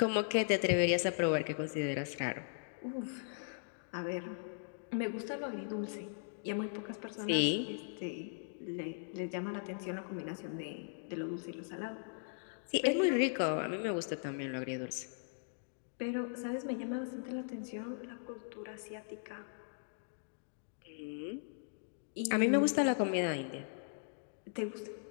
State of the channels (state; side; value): silent; right; digital silence